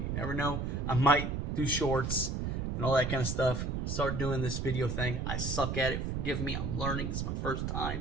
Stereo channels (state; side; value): noise; right; rumble, 1 dB below the sound